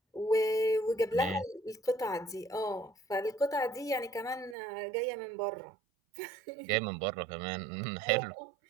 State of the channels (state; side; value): drops out; left; at 4.5 s